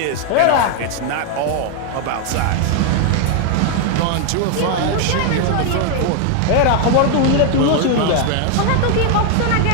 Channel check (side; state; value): both; different; correlation 0.00